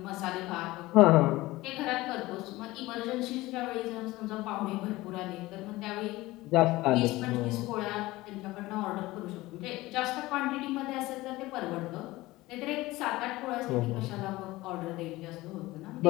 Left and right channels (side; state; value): right; quieter; 19.0 dB